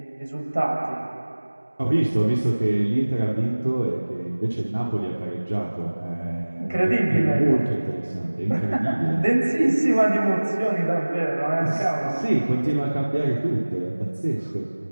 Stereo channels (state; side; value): inverted; both; correlation -1.00